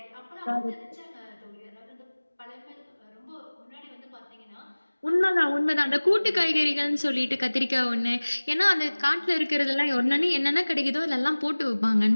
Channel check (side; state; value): both; inverted; correlation -1.00